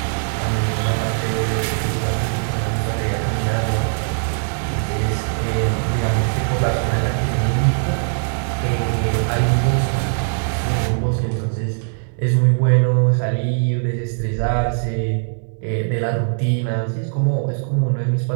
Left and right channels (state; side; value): silent; left; digital silence